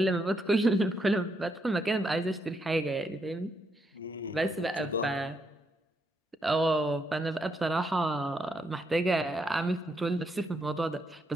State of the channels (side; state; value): both; normal; correlation 0.78